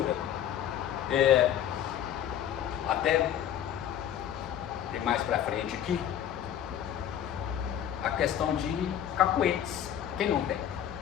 até tem mais pra frente aqui, a questão de cacuetes. Quem não tem?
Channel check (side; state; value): right; quieter; 10.4 dB